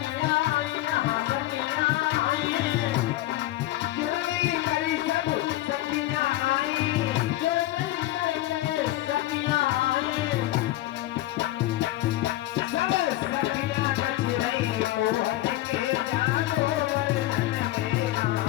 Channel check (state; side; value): quieter; right; 15.9 dB